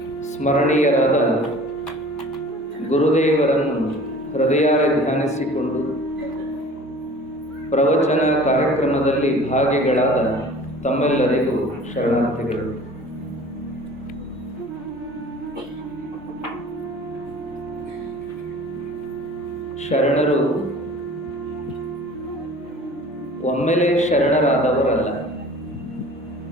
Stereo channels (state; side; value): normal; both; correlation 0.45